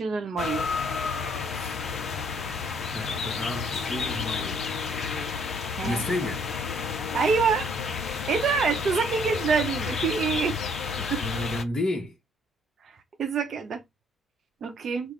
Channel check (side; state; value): both; normal; correlation 0.63